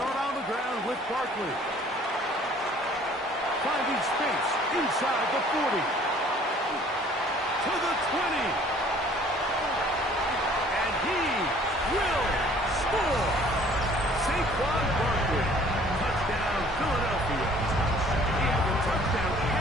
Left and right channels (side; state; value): both; normal; correlation 0.55